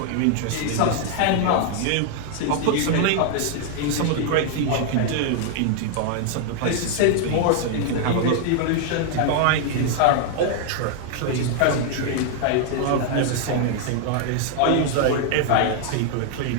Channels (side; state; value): both; different; correlation 0.00